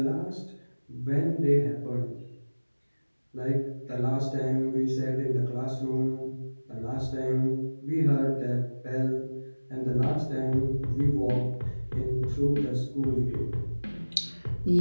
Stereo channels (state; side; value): inverted; both; correlation -1.00